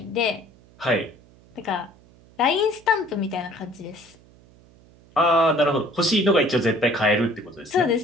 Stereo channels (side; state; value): right; noise; hum, 27 dB below the sound